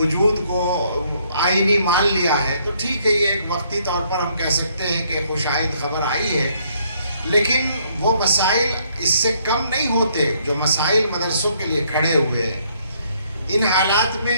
کو آئینی مان لیا ہے، تو ٹھیک ہے، یہ ایک وقتی طور پر ہم کہہ سکتے ہیں کہ خوشائند خبر آئی ہے، لیکن وہ مسائل اس سے کم نہیں ہوتے جو مسائل مدرسوں کے لیے کھڑے ہوئے ہیں۔ ان حالات میں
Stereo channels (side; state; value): both; inverted; correlation -0.68